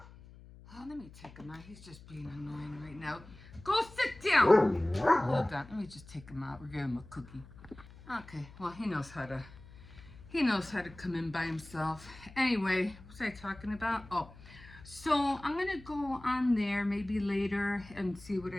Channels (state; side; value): noise; left; hum, 19 dB below the sound